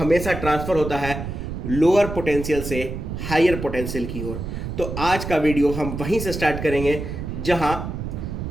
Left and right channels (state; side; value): noise; right; rumble, 6 dB below the sound